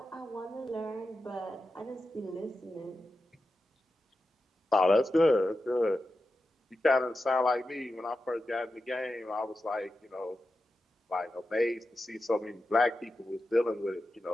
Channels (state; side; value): normal; both; correlation 0.91